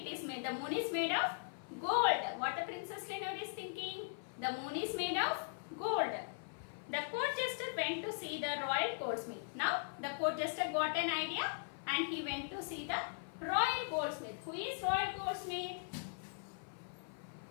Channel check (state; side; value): silent; right; 51 dB below the other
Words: the moon is made of gold. What the Princess Lenore is thinking, the moon is made of gold. The court jester went to see the royal goldsmith. Now, the court jester got an idea and he went to see the royal goldsmith. Who is royal goldsmith?